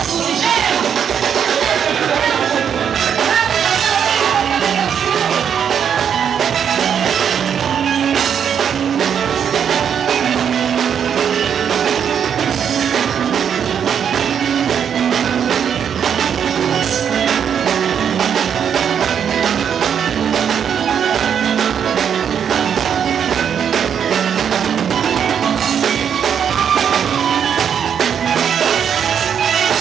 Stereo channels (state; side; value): quieter; left; 8.1 dB